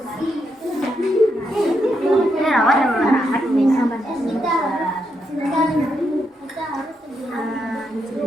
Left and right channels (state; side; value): normal; both; correlation 0.81